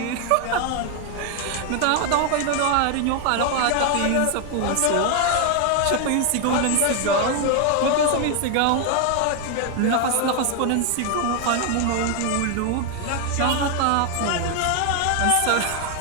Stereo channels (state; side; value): different; both; correlation 0.00